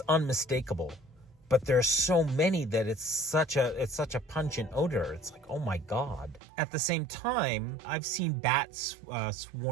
unmistakable. But there are so many that it's such a pungent odor. It's like, oh my God. At the same time, I've seen bats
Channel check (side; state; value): left; drops out; at 6.4 s